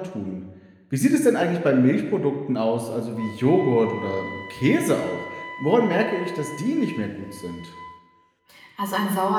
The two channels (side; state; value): both; identical; correlation 1.00